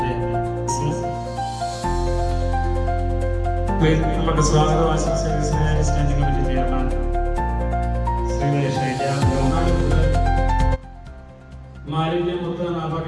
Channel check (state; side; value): identical; both; correlation 1.00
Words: നമുക്ക് സ്വാഗതം ആശംസിക്കുന്ന സ്റ്റാൻഡിംഗ് കമ്മിറ്റി ചെയർമാൻ മാലിന്യമുക്ത